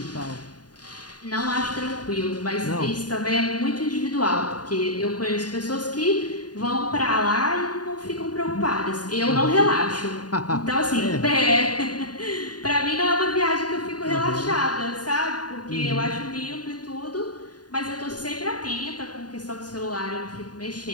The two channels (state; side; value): late; right; 0.69 ms